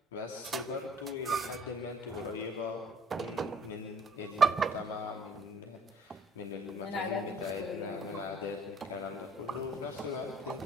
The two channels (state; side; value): normal; both; correlation 0.55